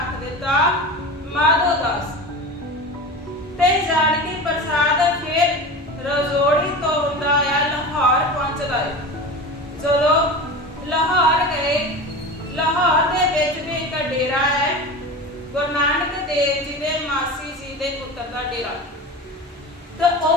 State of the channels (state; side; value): normal; both; correlation 0.30